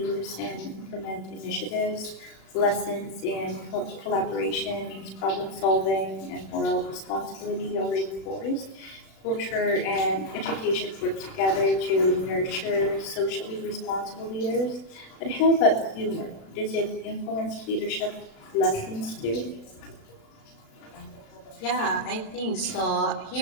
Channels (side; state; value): right; late; 36 ms